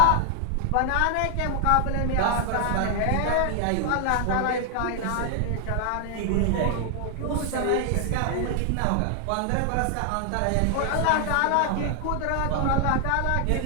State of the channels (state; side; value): different; both; correlation 0.00